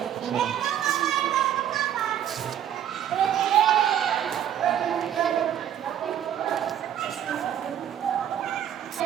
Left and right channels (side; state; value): left; quieter; 10.3 dB